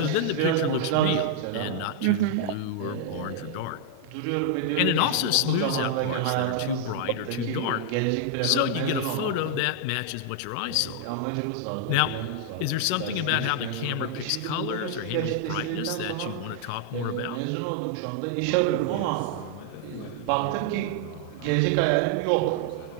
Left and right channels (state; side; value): different; both; correlation -0.01